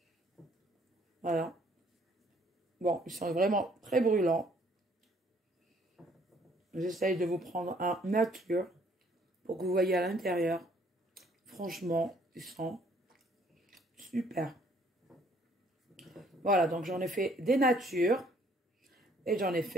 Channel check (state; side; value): normal; both; correlation 0.63